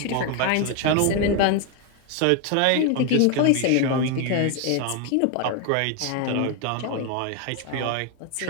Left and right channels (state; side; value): different; both; correlation 0.01